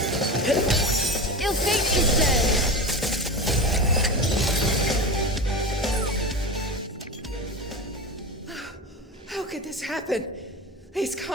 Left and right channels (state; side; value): normal; both; correlation 0.25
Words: Ill fate, she said. How could this happen? These